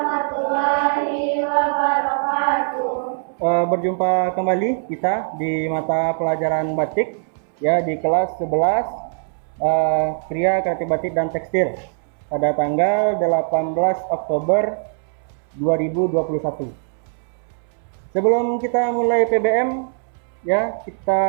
wabarakatuh. Berjumpa kembali kita di mata pelajaran batik ya di kelas 11 Kriya Kreatif Batik dan Tekstil pada tanggal 18 Oktober 2021. Sebelum kita mulai PBM ya,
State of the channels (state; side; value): silent; left; 65 dB below the other